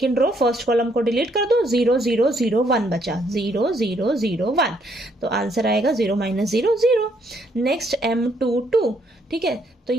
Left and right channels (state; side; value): normal; both; correlation 0.70